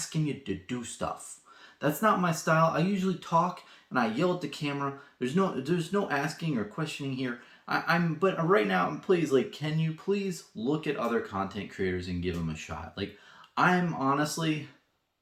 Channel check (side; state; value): both; identical; correlation 1.00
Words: you to do stuff. That's not my style. I usually talk and I yell at the camera. There's no asking or questioning here. But right now, please, can you please look at other content creators and give them a shot? I'm honestly